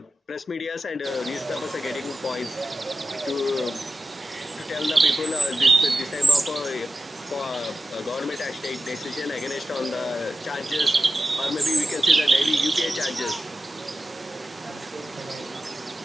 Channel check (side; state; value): both; normal; correlation 0.92